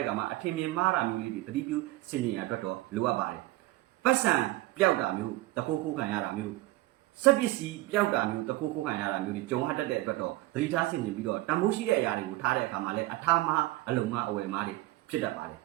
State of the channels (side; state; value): left; quieter; 18.0 dB